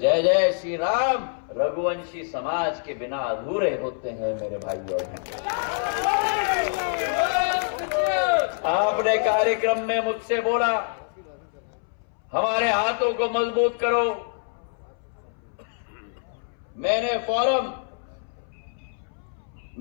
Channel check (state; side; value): silent; right; 61 dB below the other